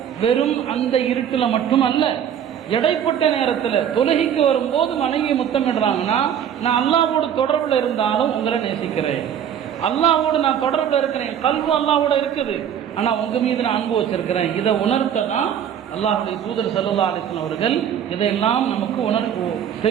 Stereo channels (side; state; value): left; quieter; 9.1 dB